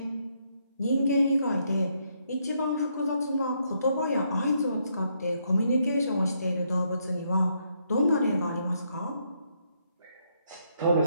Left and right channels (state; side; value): inverted; both; correlation -0.75